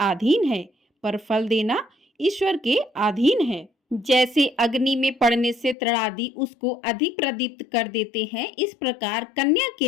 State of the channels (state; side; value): drops out; right; at 5.8 s